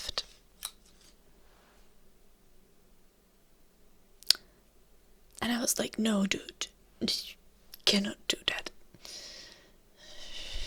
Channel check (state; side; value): identical; both; correlation 1.00